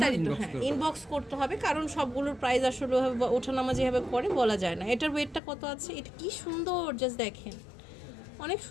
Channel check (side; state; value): right; drops out; at 5.4 s